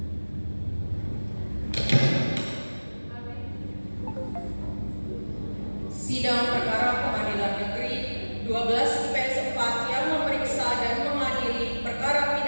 Sidang perkara Pengadilan Negeri 12 IPS 4 yang memeriksa dan mengadili perkara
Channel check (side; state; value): both; inverted; correlation -1.00